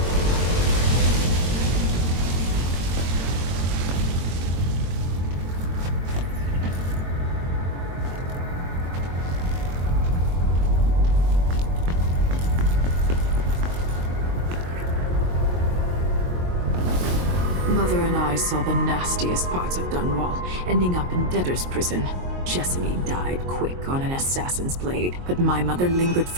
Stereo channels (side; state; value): left; late; 22 ms